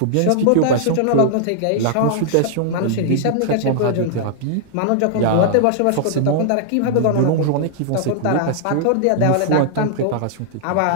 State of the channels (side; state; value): both; different; correlation -0.01